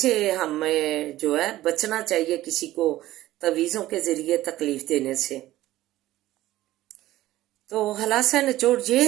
ہمیں جو ہے بچنا چاہیے کسی کو تویزوں کے ذریعے تکلیف دینے سے۔ تو خلاصہ نچوڑ یہ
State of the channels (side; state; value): left; quieter; 15.5 dB